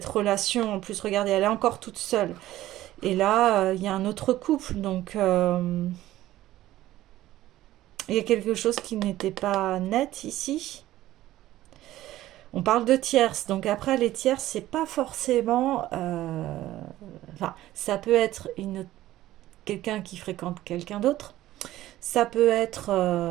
relation, en plus, regardez, elle est encore toute seule. Et là, il y a un autre couple, donc il y a quelque chose qui n'était pas net ici. On parle de tierces, donc après les tierces, c'est pas forcément... Enfin, ça peut être quelqu'un qui fréquente quelqu'un d'autre. Ça peut être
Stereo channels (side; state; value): left; quieter; 14.9 dB